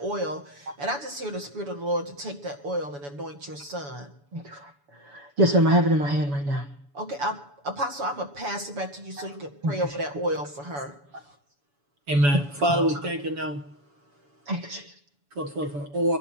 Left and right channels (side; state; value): left; late; 7.0 ms